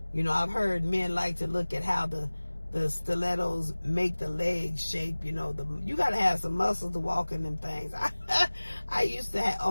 I've heard men like to look at how the stilettos make the legs shape. You got to have some muscles to walk in them things. I used to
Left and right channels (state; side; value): inverted; both; correlation -1.00